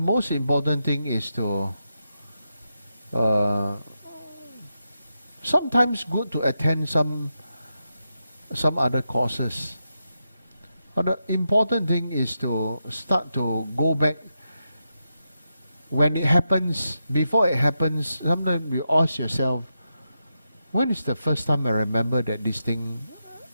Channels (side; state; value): both; inverted; correlation -0.87